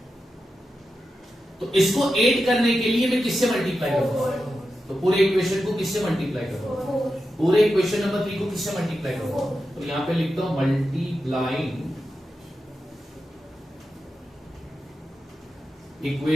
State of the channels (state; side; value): normal; both; correlation 0.90